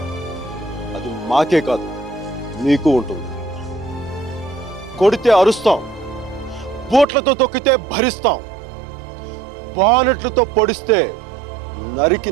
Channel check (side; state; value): left; drops out; at 7.1 s